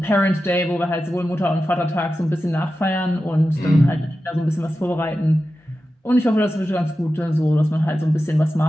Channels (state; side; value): normal; both; correlation 0.93